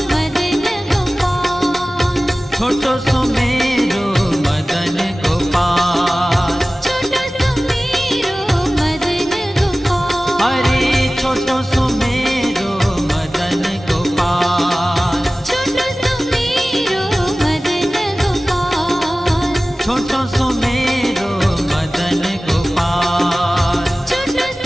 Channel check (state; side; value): normal; both; correlation 0.97